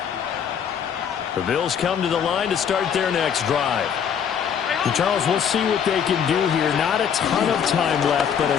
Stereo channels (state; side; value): quieter; right; 7.9 dB